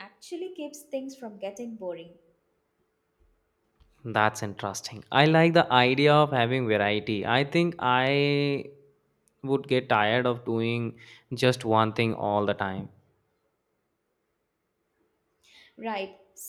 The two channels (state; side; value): identical; both; correlation 1.00